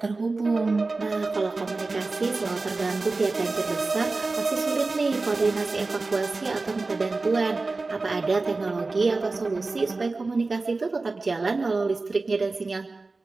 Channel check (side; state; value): left; quieter; 3.6 dB